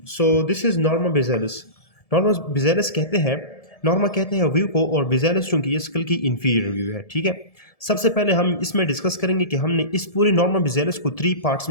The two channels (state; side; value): late; right; 1.7 ms